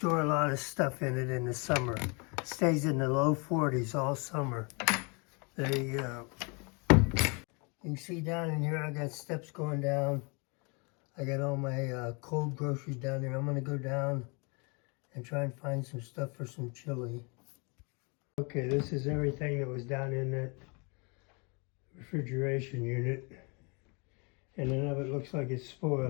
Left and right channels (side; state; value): right; quieter; 32.2 dB